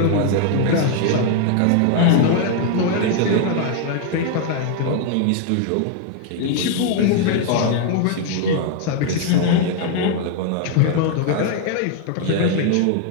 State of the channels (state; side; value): different; both; correlation 0.00